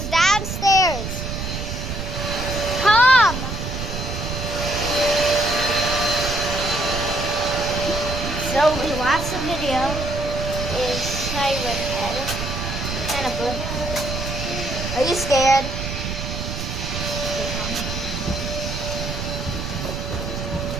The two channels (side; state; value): right; noise; rumble, 5 dB below the sound